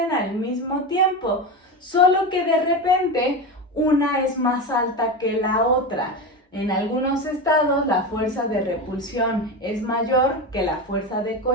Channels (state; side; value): normal; both; correlation 0.20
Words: al mismo tiempo, solo que de repente una es más alta que la otra. En algunos estados la fuerza de repulsión es mayor que la fuerza de